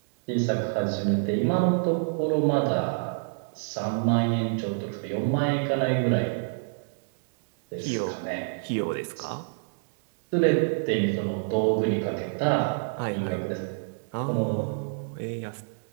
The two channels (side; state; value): left; silent; digital silence